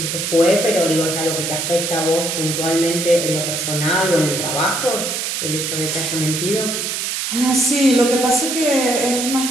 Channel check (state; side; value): noise; right; hiss, 2 dB below the sound